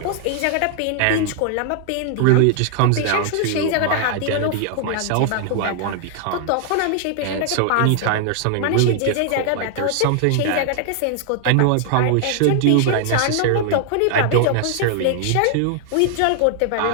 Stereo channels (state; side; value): different; both; correlation 0.00